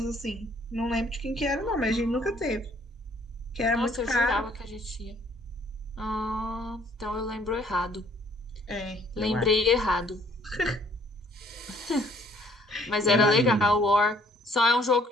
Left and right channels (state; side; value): normal; both; correlation 0.60